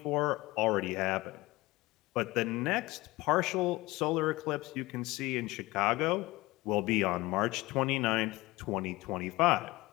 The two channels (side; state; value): right; quieter; 20.5 dB